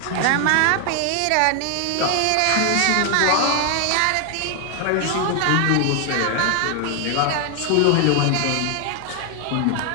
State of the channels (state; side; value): different; both; correlation 0.00